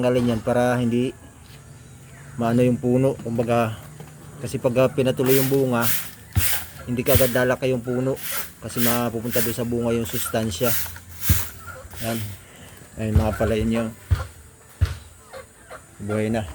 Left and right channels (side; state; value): both; identical; correlation 1.00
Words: yan para hindi maano yung puno. Kumbaga, kasi pag pinatuloy yung bunga, hindi ka agad lalaki yung puno kasi mapupunta doon sa bunga yung sustansya. Yan. Ayun mga palayan niya. Buhay na.